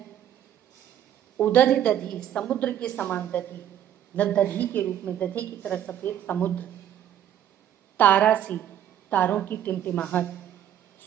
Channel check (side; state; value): left; quieter; 10.7 dB